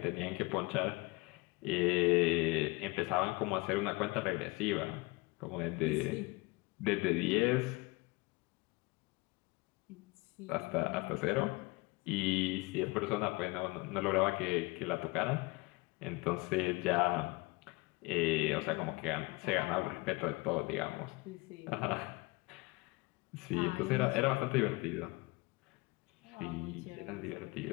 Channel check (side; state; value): right; quieter; 25.0 dB